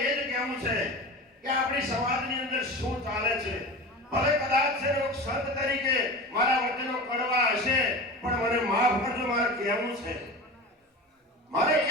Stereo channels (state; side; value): normal; both; correlation 0.31